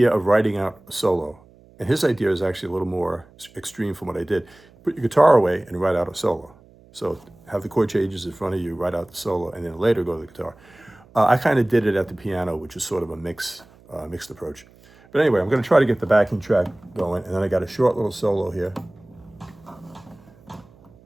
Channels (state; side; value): noise; right; hum, 27 dB below the sound